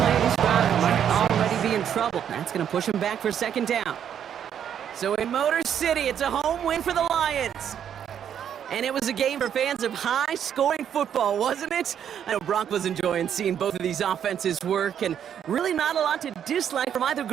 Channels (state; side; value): quieter; left; 9.1 dB